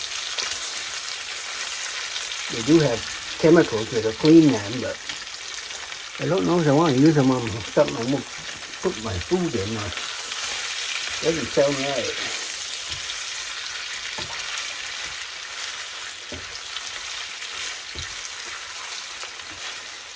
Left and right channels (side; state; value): both; identical; correlation 1.00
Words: they do have chemicals that'll clean them, but I don't know if I want to use them on something I won't put my food in. Doesn't sound right.